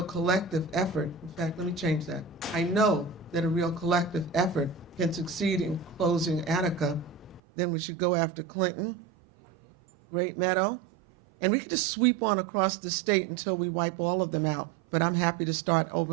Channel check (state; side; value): drops out; left; at 7.4 s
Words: collective effort, in fact, let me change that. I know that a real collective effort can succeed in closing Attica. Then we should go after Clinton, Great Meadow, and we can just sweep on across the state until we wipe all of them out. But I'm happy to start